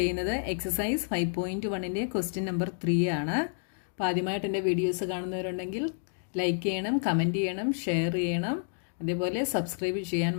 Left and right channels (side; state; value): right; silent; digital silence